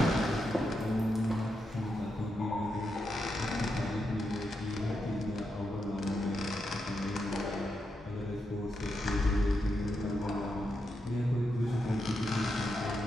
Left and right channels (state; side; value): normal; both; correlation 0.85